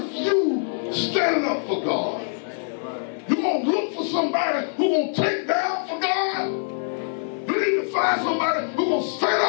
you standing up for God? You gonna look for somebody who gonna take down for God? You need to find somebody who gonna stand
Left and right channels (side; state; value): right; silent; 56 dB below the other